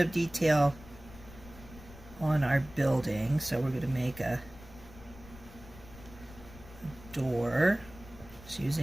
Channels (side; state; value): left; noise; rumble, 18 dB below the sound